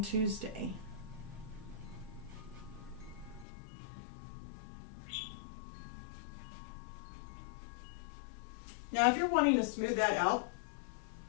Tuesday. Now, if you're wanting to smooth that out,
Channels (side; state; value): right; drops out; at 3.5 s